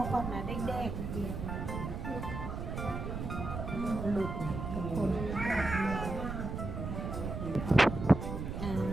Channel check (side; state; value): right; noise; rumble, 5 dB below the sound